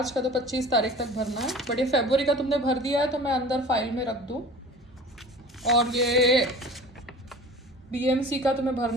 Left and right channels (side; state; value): both; normal; correlation 0.41